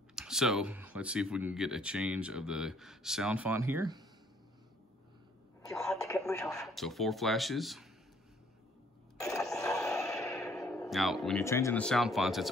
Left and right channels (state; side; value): normal; both; correlation 0.62